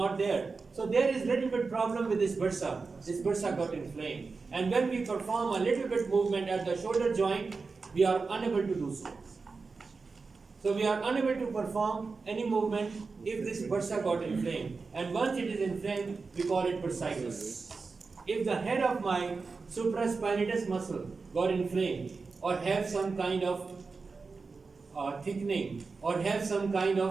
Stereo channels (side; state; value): left; quieter; 4.4 dB